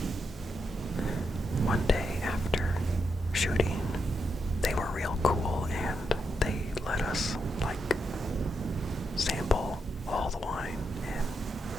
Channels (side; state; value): both; normal; correlation 0.83